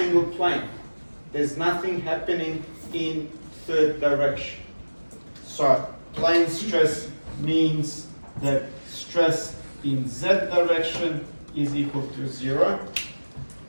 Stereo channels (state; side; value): inverted; both; correlation -1.00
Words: plane. There's nothing happening in third direction. So, plane stress means that stress in Z direction is equal to 0,